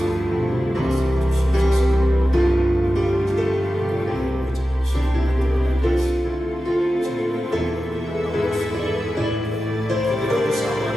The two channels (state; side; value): normal; both; correlation 0.93